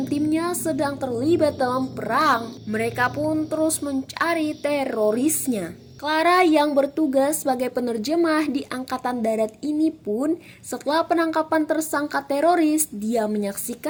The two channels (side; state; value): both; identical; correlation 1.00